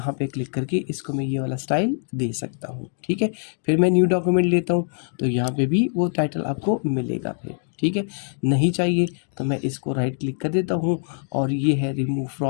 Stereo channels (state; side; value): silent; right; 63 dB below the other